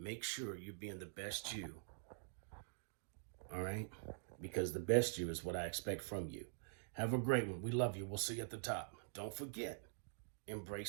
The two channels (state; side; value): silent; left; digital silence